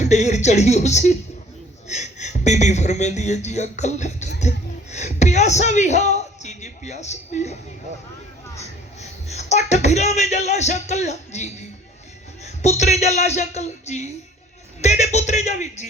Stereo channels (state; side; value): normal; both; correlation 0.53